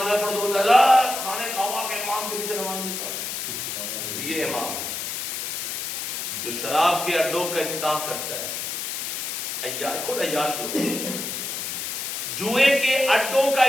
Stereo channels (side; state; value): left; noise; hiss, 4 dB below the sound